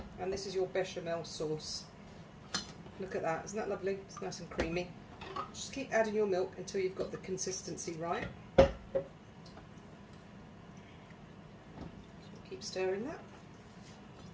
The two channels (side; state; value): both; identical; correlation 1.00